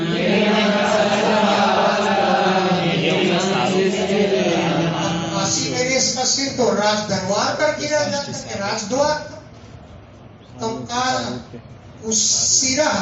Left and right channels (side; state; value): both; identical; correlation 1.00